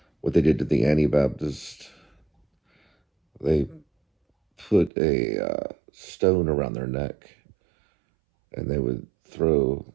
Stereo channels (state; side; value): drops out; left; at 4.9 s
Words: what they did to the Anabaptist. They put a stone around their neck, and they would throw,